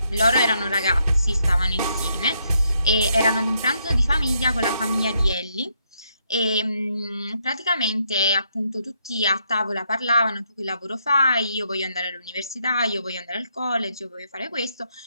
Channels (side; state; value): both; inverted; correlation -0.77